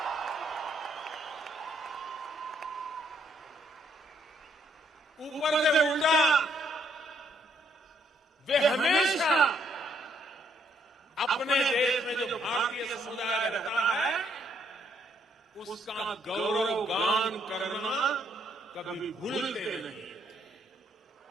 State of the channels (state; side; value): normal; both; correlation 0.71